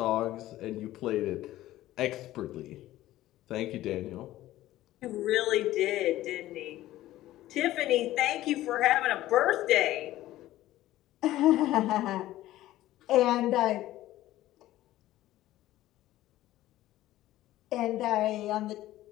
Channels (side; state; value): right; quieter; 15.1 dB